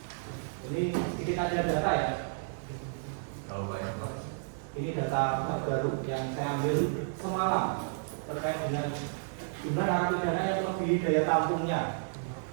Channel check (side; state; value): left; silent; digital silence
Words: Ini sedikit ada data ya. Kalau banyak Pak. Ini data terbaru yang saya ambil semalam terkait dengan jumlah narapidana yang melebihi daya tampungnya.